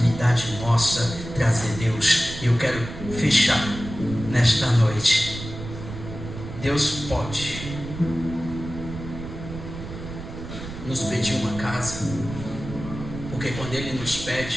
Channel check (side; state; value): right; noise; rumble, 10 dB below the sound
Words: nossa trazer Deus. E eu quero fechar nesta noite. Deus pode nos pedir uma casa, porque quando Ele nos